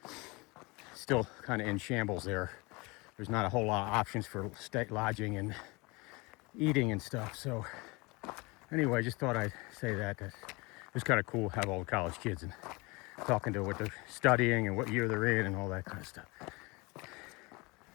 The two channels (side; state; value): right; quieter; 25.8 dB